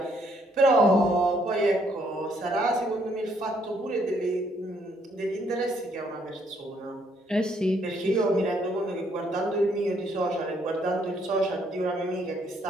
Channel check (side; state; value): both; normal; correlation 0.69